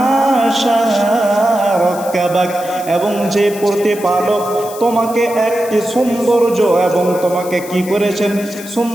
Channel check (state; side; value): noise; left; hiss, 15 dB below the sound